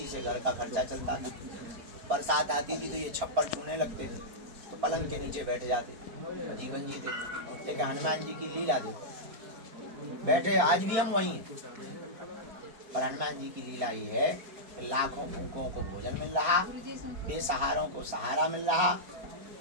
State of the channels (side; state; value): left; late; 4.4 ms